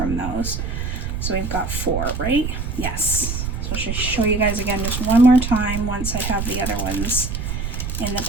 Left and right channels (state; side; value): noise; right; rumble, 3 dB below the sound